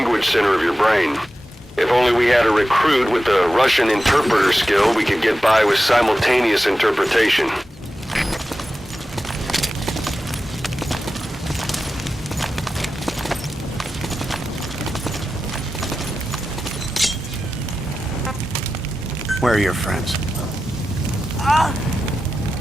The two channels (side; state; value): both; normal; correlation 0.92